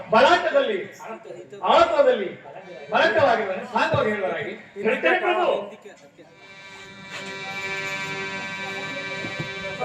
ಬಲಾಟದಲ್ಲಿ ಆಳತ್ವದಲ್ಲಿ ಬಲಕವಾಗಿರುವನೆ ಸಾಂಗವಾಗಿ ಹೇಳುವರಾಗಿ ಹೇಳ್ತೇನೆ ಪ್ರಭು.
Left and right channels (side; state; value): both; identical; correlation 1.00